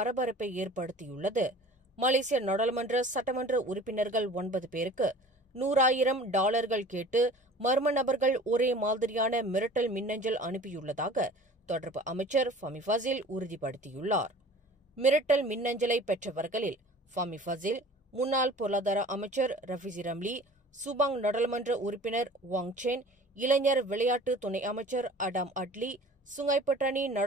ஏற்படுத்தியுள்ளது. மலேசிய நாடாளுமன்ற சட்டமன்ற உறுப்பினர்கள் 9 பேருக்கு $100,000 கேட்டு மர்ம நபர்கள் ஒரே மாதிரியான மிரட்டல் மின்னஞ்சல் அனுப்பியுள்ளதாக தொடர்பு அமைச்சர் ஃபமி ஃபசில் உறுதிப்படுத்தியுள்ளார். மிரட்டல் மின்னஞ்சலை பெற்றவர்களில் ஃபமி ஃபசில், முன்னாள் பொருளாதார அமைச்சர் ரஃபிசி ரம்லி, சுபாங் நாடாளுமன்ற உறுப்பினர் வாங் சென், இளைஞர் விளையாட்டு துணை அமைச்சர் அடாம் அட்லி, சுங்கைப்பட்டாணி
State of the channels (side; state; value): both; normal; correlation 0.44